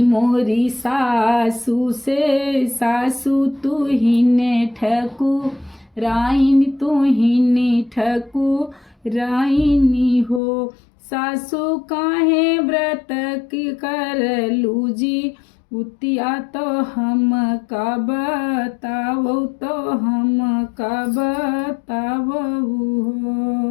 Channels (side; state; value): right; drops out; at 10.4 s